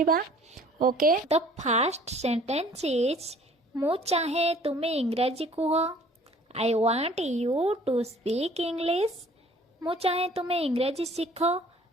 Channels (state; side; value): normal; both; correlation 0.54